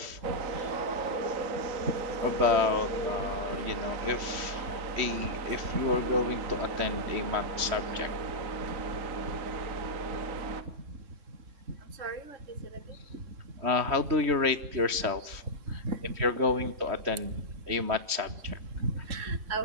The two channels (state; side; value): late; left; 3.1 ms